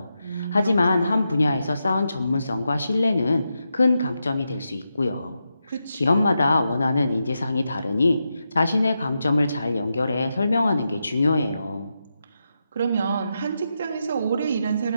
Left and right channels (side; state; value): both; inverted; correlation -0.87